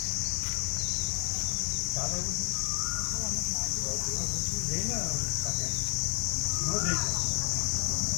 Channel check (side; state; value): right; quieter; 31.9 dB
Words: ચાલે એવું જઈને કાકે ન જઈ શકે